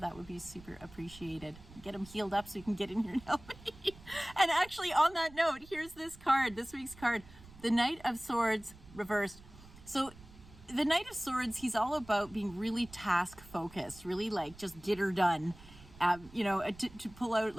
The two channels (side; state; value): right; noise; rumble, 20 dB below the sound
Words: that would be super appreciated. Get him healed up so he can get in here and help me. And actually, on that note, here's this card, this week's card. The Knight of Swords reversed. So the Knight of Swords, he's all about being really task focused, really like just get her done. To pull out